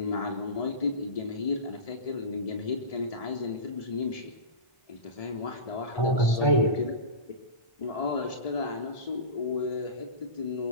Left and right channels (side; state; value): right; late; 1.7 ms